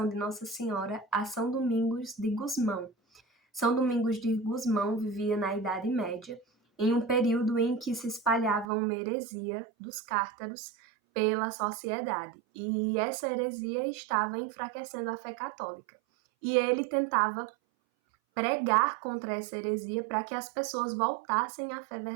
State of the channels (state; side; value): drops out; left; at 8.7 s